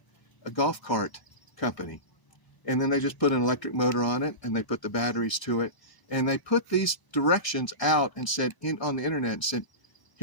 a golf cart company. And then they just put an electric motor on it, and they put the batteries to it. And they put these directions out and said, on the internet, and said,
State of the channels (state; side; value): late; right; 1.0 ms